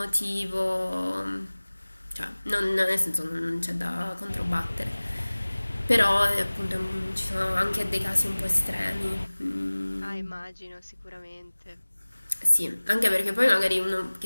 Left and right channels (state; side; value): inverted; both; correlation -1.00